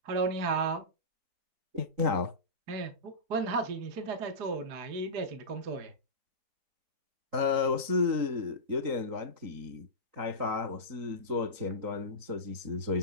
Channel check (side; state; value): left; late; 3.9 ms